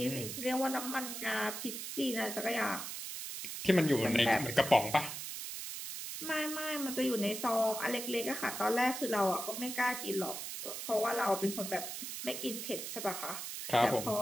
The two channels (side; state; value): right; noise; hiss, 6 dB below the sound